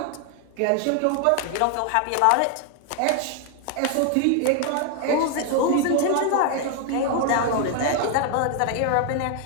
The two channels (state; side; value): different; both; correlation 0.00